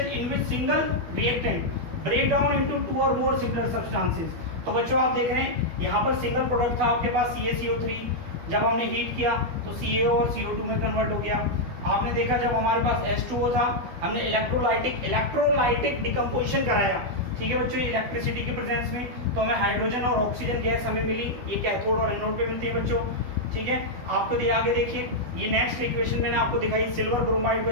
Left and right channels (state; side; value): late; left; 12 ms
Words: in which single reactant break down into 2 और मोर सिमिलर सब्सटेंसेस। तो बच्चों आप देख रहे हैं यहाँ पर सिंगल प्रोडक्ट था आपके पास CaCO3, जब हमने हीट किया तो CaO और CO2 में कन्वर्ट हो गया। आपने देखा जब हमारे पास H2O था, हमने इलेक्ट्रोलाइटिक डिकम्पोजिशन कराया, ठीक है बच्चों, इलेक्ट्रिसिटी की प्रेजेंस में, तो हमें हाइड्रोजन और ऑक्सीजन गैस हमें मिली, ये कैथोड और एनोड पे मिलती है बच्चों, ठीक है। आपको आगे देखिए, ये नेक्स्ट इक्वेशन मैंने आपको दिखाई, सिल्वर ब्रोमाइड को